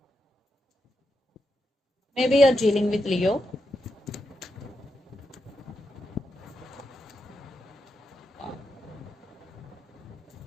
Maybe you're dealing with Leo.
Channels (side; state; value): both; normal; correlation 0.85